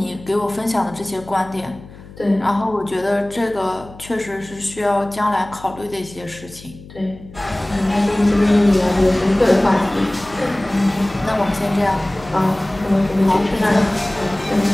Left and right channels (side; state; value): left; noise; hum, 19 dB below the sound